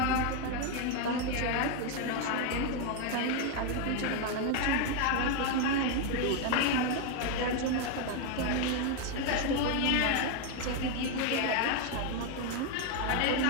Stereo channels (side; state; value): both; different; correlation 0.01